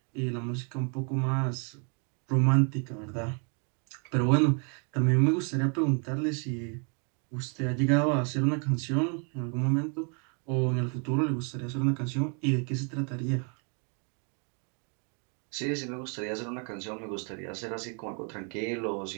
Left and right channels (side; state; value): left; quieter; 38.1 dB